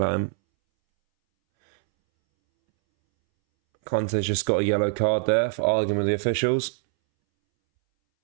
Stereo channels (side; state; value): left; silent; 63 dB below the other